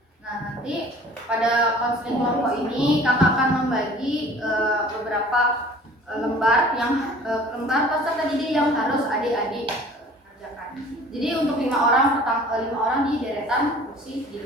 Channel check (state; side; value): normal; both; correlation 0.48